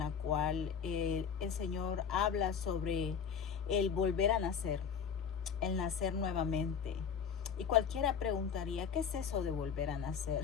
cual el Señor habla sobre el volver a nacer, el nacer nuevamente. Y cualquiera preguntaría, ¿qué es eso de volver a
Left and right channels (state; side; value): quieter; right; 7.0 dB